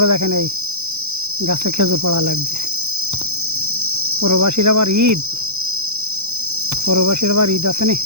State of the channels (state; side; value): late; left; 0.81 ms